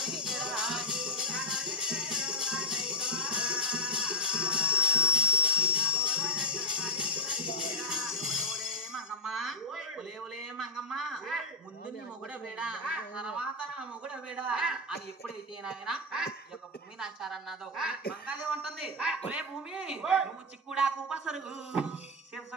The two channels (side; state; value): both; normal; correlation 0.01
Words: మంగమ్మ ముందు నీ మొగుడ వేడా తర్వాత నా మొగుడ వేడా అని ఎప్పుడైతే నాయన ఈ యొక్క భూమి నాచారన్నదో మంగాదే ఉంటుంది ఒలే భూమి నువ్వు చిక్కుడాకు పసరుగు